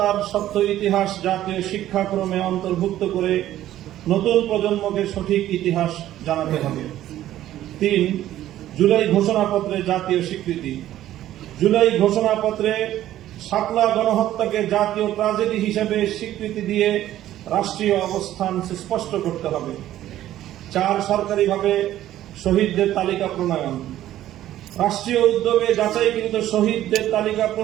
সত্য ইতিহাস জাতীয় শিক্ষাক্রমে অন্তর্ভুক্ত করে নতুন প্রজন্মকে সঠিক ইতিহাস জানাতে হবে। 3. জুলাই ঘোষণাপত্রে জাতীয় স্বীকৃতি। জুলাই ঘোষণাপত্রে শাপলা গণহত্যাকে জাতীয় ট্র্যাজেডি হিসেবে স্বীকৃতি দিয়ে রাষ্ট্রীয় অবস্থান সুস্পষ্ট করতে হবে। 4. সরকারিভাবে শহীদদের তালিকা প্রণয়ন। রাষ্ট্রীয় উদ্যোগে যাচাইকৃত শহীদদের তালিকা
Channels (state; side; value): quieter; left; 13.2 dB